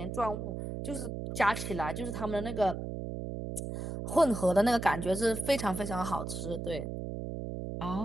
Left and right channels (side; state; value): right; noise; hum, 5 dB below the sound